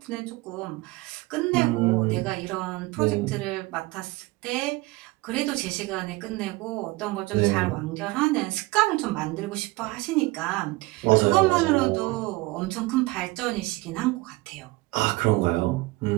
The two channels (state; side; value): quieter; left; 21.6 dB